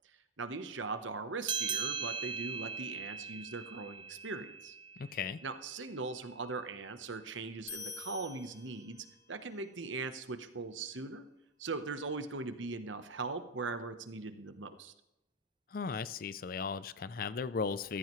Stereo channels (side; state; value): both; normal; correlation 0.04